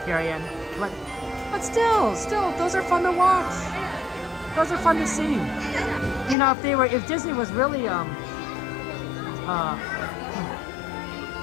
But still, those are fun to watch. Those are fun to see. If Disney was really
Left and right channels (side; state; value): right; drops out; at 6.4 s